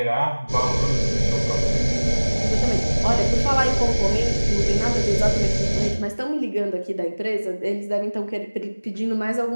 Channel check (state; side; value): inverted; both; correlation -1.00